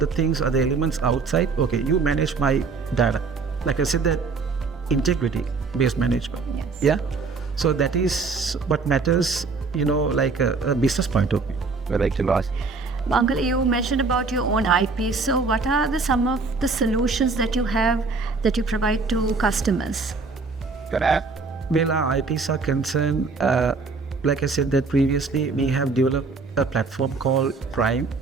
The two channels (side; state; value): left; quieter; 4.3 dB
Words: things, other elements outside. Okay, you manage my data. Like I said, that integrity-based management. Yes. Yeah. So that is what matters, like a business point of view. I'd like to ask. Uncle, you mentioned about your own IP. So what are some of the solutions that you have that you provide to customers? Well, our IPs are concerned, like I said that previously, we have developed a platform called Prime.